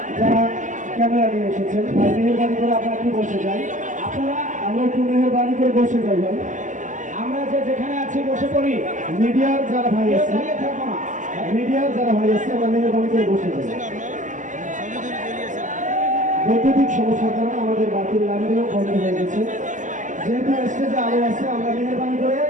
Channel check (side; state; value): left; late; 0.37 ms